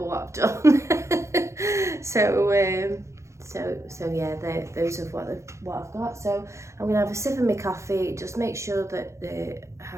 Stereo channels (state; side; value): late; left; 0.14 ms